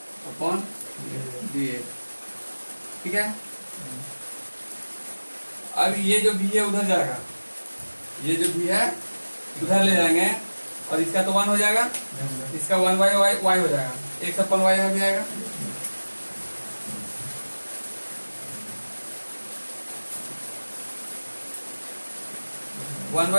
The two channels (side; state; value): both; inverted; correlation -1.00